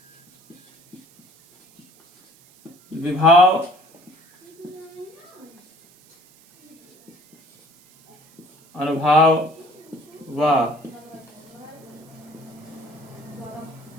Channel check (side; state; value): right; noise; hiss, 28 dB below the sound